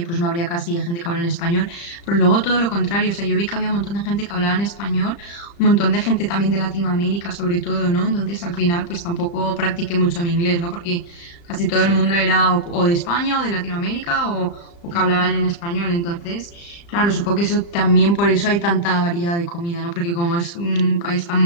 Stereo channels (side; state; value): right; late; 35 ms